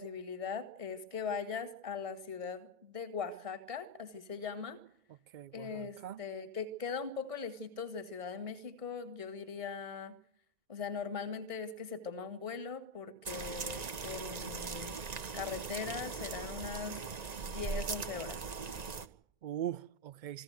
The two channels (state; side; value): late; left; 1.9 ms